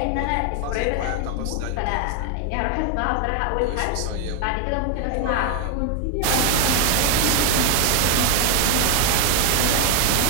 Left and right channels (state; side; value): different; both; correlation 0.01